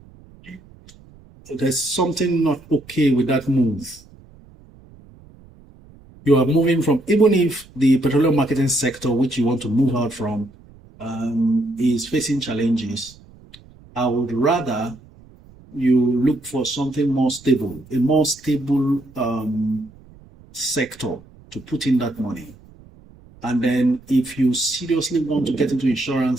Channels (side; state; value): right; noise; rumble, 24 dB below the sound